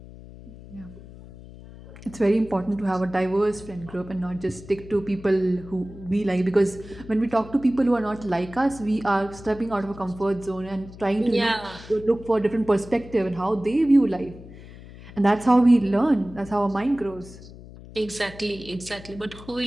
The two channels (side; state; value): left; noise; hum, 17 dB below the sound